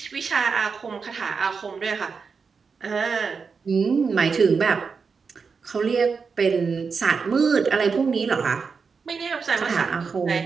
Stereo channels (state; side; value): quieter; left; 5.3 dB